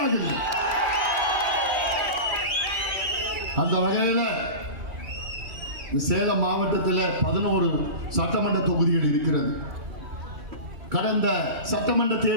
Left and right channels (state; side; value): late; left; 2.3 ms